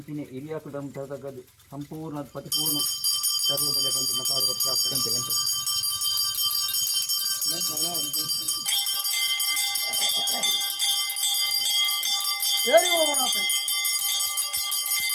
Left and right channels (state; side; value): identical; both; correlation 1.00